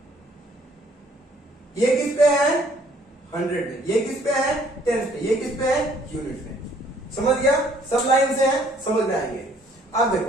ये किस पे है 100 पे, ये किस पे है 10 पे, ये किस पे है यूनिट पे। समझ गया? सब लाइन से है, समझ में आएंगे। अब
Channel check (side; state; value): both; normal; correlation 0.61